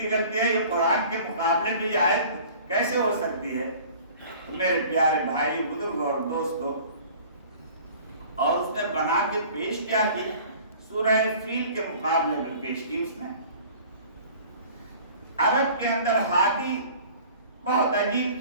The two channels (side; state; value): both; inverted; correlation -0.47